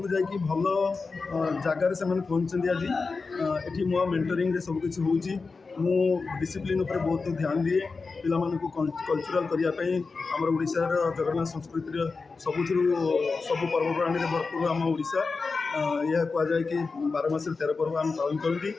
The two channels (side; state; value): right; quieter; 4.3 dB